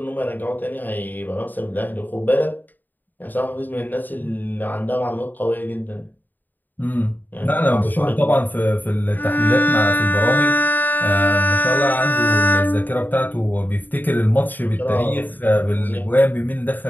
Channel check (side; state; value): right; late; 0.088 ms